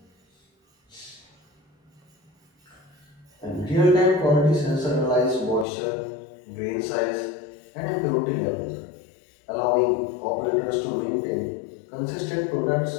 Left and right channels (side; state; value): right; drops out; at 5.7 s